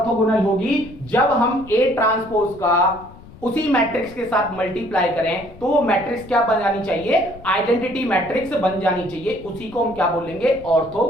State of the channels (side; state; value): left; noise; rumble, 20 dB below the sound